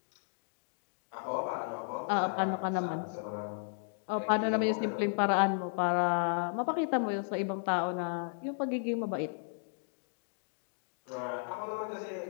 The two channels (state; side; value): silent; right; digital silence